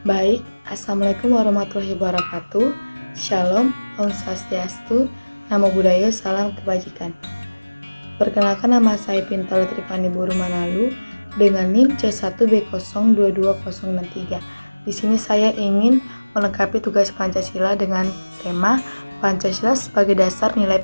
Baik, Assalamualaikum warahmatullahi wabarakatuh. Shalom, Om Swastiastu, Namo Buddhaya, Salam Kebajikan. Perkenalkan, nama saya Pintauli Trifani Buru Manalu dengan NIM C1B022063. Di sini saya ingin melengkapi tugas Pancasila dengan tema Pancasila sebagai dasar nilai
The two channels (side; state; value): both; inverted; correlation -1.00